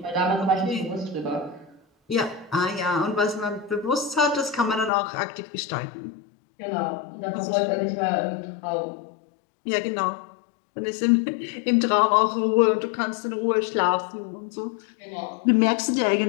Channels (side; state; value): right; drops out; at 4.9 s